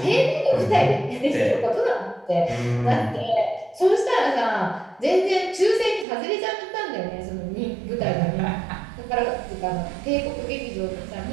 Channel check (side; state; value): left; drops out; at 6.1 s